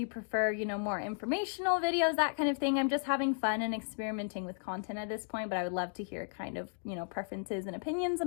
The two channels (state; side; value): silent; right; digital silence